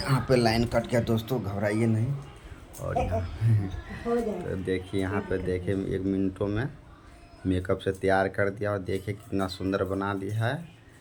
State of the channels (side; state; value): both; identical; correlation 1.00